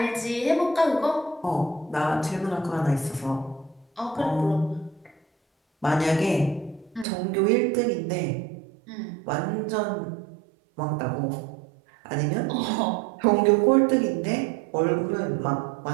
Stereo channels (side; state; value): left; drops out; at 7.1 s